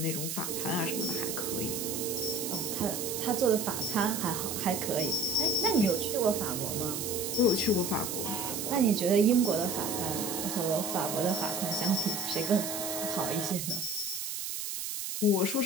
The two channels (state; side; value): noise; right; hiss, 4 dB below the sound